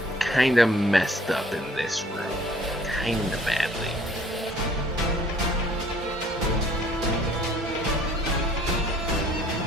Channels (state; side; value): normal; both; correlation 0.57